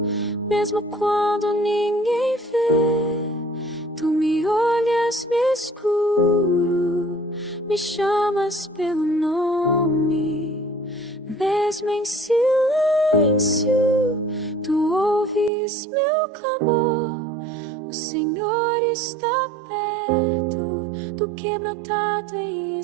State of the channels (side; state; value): left; drops out; at 15.5 s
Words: mesmo quando ninguém vê. Tu me olhas, me escuro, me chamas pelo nome. Mesmo em silêncio, tu ouves meu clamor. O Senhor está perto do quebrantado em